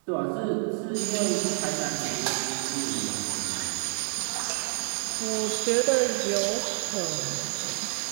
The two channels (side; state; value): left; silent; digital silence